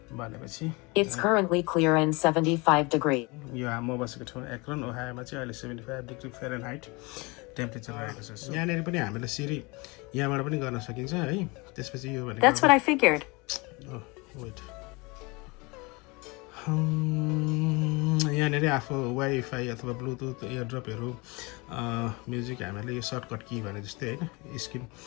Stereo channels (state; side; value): quieter; right; 26.5 dB